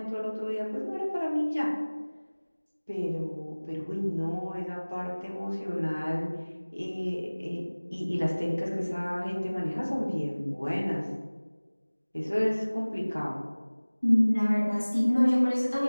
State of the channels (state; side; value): inverted; both; correlation -1.00